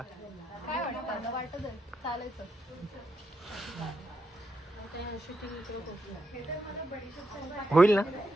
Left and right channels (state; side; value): normal; both; correlation 0.83